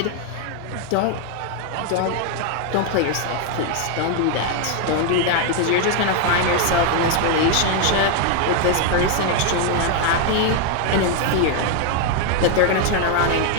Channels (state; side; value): different; both; correlation 0.01